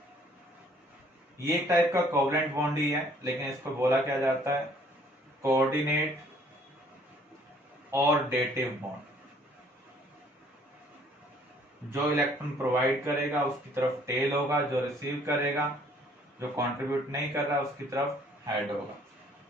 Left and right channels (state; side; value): normal; both; correlation 0.60